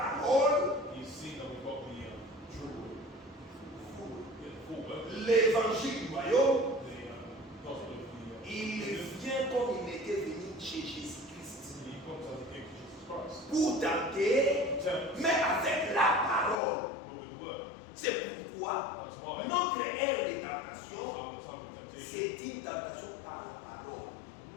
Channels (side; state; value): right; drops out; at 16.6 s